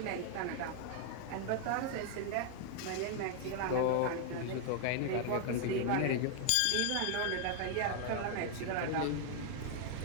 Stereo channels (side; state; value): both; different; correlation 0.00